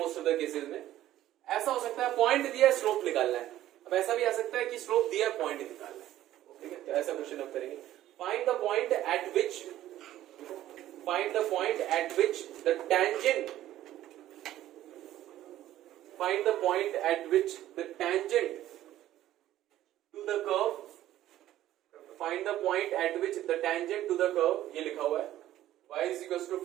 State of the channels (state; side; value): quieter; left; 13.5 dB